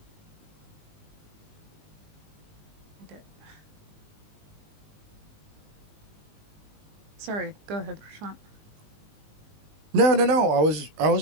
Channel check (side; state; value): left; late; 19 ms